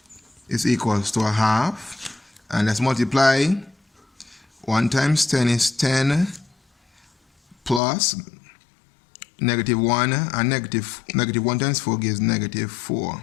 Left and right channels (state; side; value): drops out; right; at 7.8 s